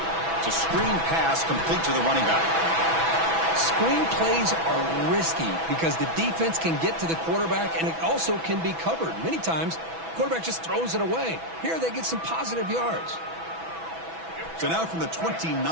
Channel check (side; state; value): left; late; 6.1 ms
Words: It's a screen pass complete to the running back. Screen plays are risky because the defense can get to the quarterback, and it also can be covered. Many times, the quarterback just throws it away. Here, they get some positive yards. So now from the